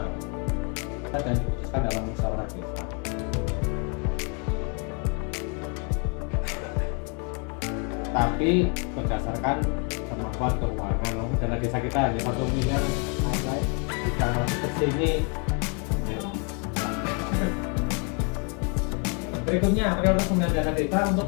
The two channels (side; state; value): right; quieter; 36.9 dB